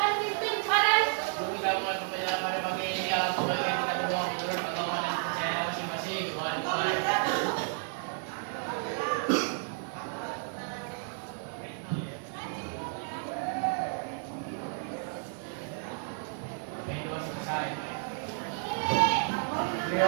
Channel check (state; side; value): silent; left; 55 dB below the other